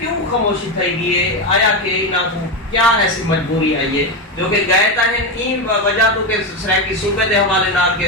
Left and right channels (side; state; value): both; normal; correlation 0.12